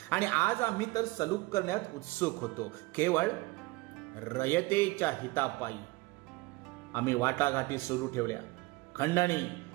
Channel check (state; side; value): quieter; left; 21.7 dB